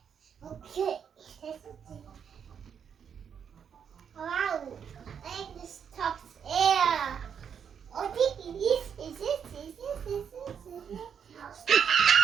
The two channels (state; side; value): quieter; left; 7.6 dB